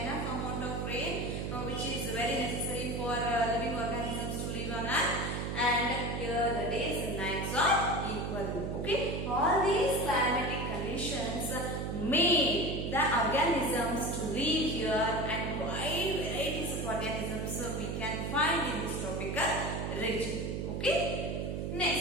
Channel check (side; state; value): right; noise; hum, 2 dB below the sound